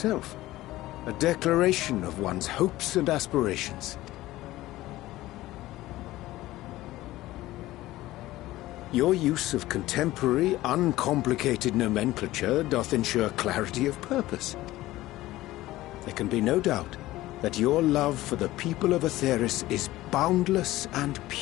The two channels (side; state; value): right; quieter; 16.8 dB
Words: a declaration of one's hopes and aspirations. Your use of contemporary, uncomplicated nomenclature doth ensure clarity of purpose. There can be no doubt that your love for the people of Aetheris is boundless and